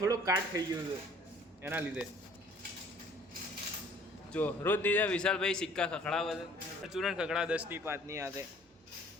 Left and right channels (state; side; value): normal; both; correlation 0.55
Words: થોડુંક કાટ થઈ ગયું છે એના લીધે. જો રોજ દીધા વિશાલભાઈ સિક્કા ખખડાવે છે, ચૂરણ ખખડા 10 ની 5 ની હાથે.